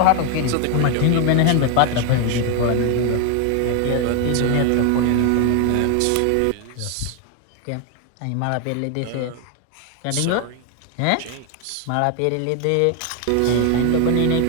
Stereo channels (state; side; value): different; both; correlation 0.01